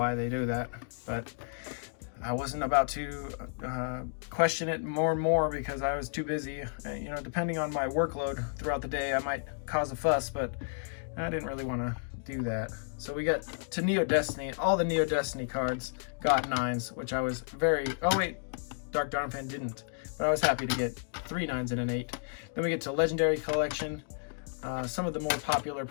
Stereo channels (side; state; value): right; silent; digital silence